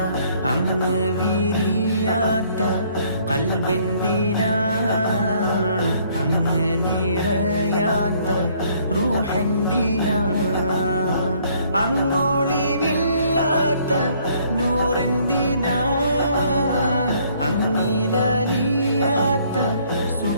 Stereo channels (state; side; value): inverted; both; correlation -0.63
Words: അങ്ങ് വിരിയാത്ത ഖൽബെന്തിനാ അങ്ങ് നിറയാത്ത റൂഹെന്തിനാ അങ്ങൊളിവില്ലാത്ത നൂറെന്തിനാ അങ്ങിലലിയാത്ത